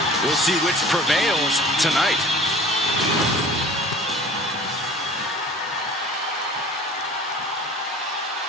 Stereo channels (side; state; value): both; normal; correlation 0.44